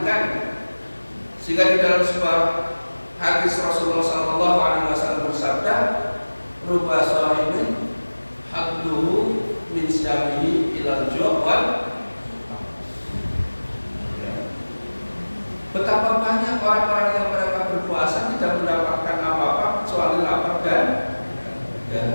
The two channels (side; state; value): both; inverted; correlation -1.00